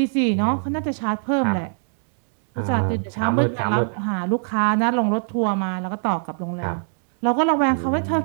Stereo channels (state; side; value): silent; left; digital silence